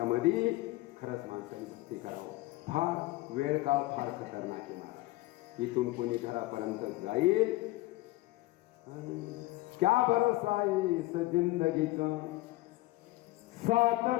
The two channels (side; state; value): right; quieter; 19.3 dB